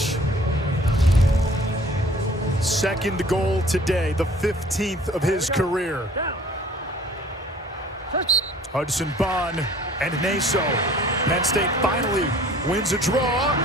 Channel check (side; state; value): both; normal; correlation 0.51